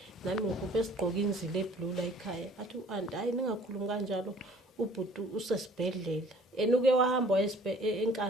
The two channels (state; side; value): normal; both; correlation 0.53